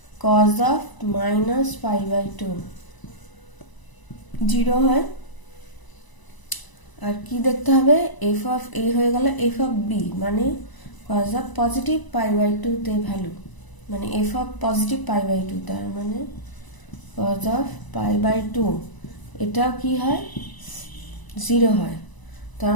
cos of minus pi by two 0 হয়। আর কি দেখতে হবে, এফ অফ এ হয়ে গেল এফ অফ বি, মানে cos of positive pi by two তে ভ্যালু, মানে F of positive pi by two, তার মানে cos of pi by two এটাও কি হয় 0 হয়। তো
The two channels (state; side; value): late; right; 1.0 ms